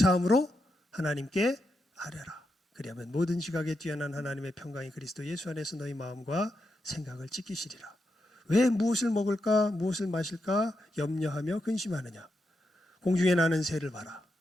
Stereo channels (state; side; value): normal; both; correlation 0.85